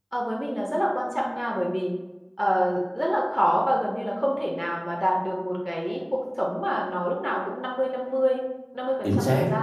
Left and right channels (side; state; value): both; identical; correlation 1.00